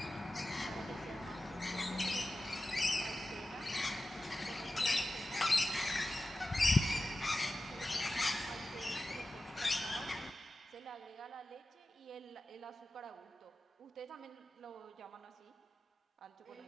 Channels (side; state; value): both; normal; correlation 0.94